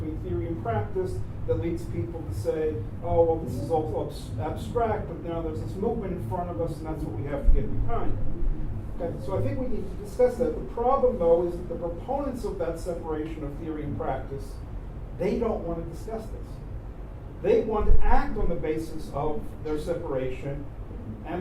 theory and practice that leads people to say, oh, well, this is all abstract, but now there's this movement in front of us, and that's what we have to get behind. Okay, so I think we need to discuss that. The problem, though, is that the proponents of that separation of theory and practice, they don't want to discuss this. They want to act on the basis of their separation,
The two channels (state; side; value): identical; both; correlation 1.00